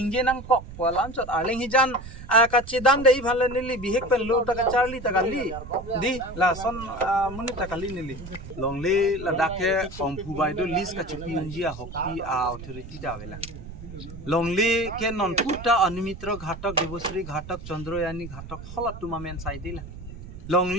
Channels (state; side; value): noise; right; rumble, 13 dB below the sound